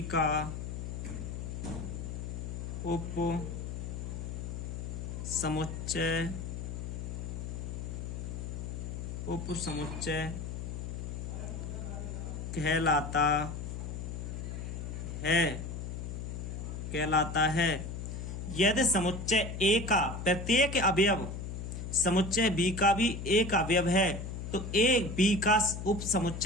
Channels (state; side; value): noise; left; hum, 6 dB below the sound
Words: का उप समुच्चय कहलाता है। यदि समुच्चय ए का प्रत्येक अवयव समुच्चय बी का भी एक अवयव है तो ए बी का उप